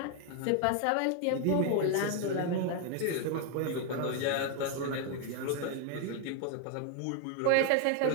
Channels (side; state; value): both; different; correlation 0.01